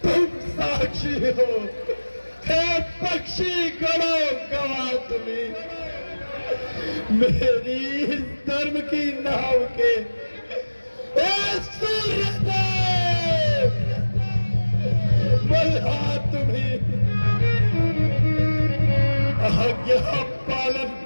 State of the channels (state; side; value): inverted; both; correlation -1.00